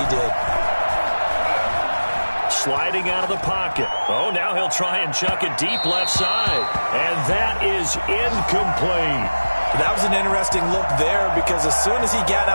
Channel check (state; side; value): inverted; both; correlation -1.00